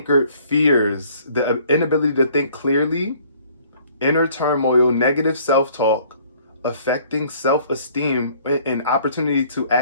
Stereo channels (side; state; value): both; inverted; correlation -0.57